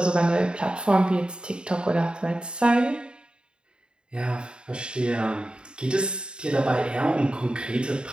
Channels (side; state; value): left; late; 0.051 ms